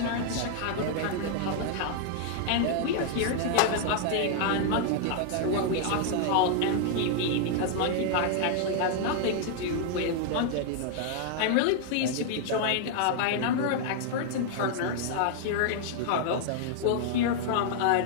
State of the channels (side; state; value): both; different; correlation 0.00